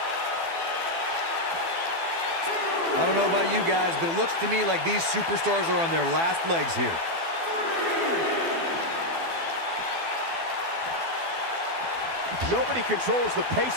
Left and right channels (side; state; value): left; late; 12 ms